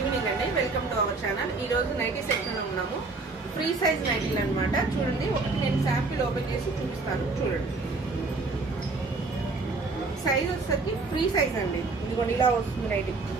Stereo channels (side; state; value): left; quieter; 3.7 dB